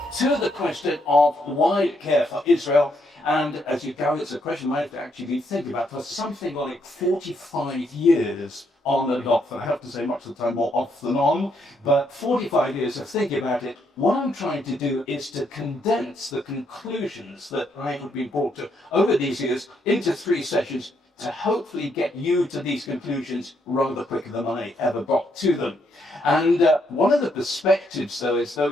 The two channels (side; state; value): both; normal; correlation 0.75